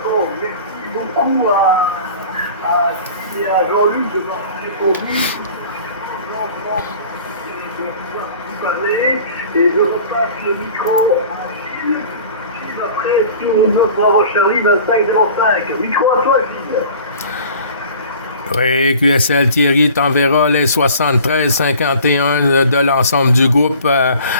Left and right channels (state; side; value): inverted; both; correlation -0.44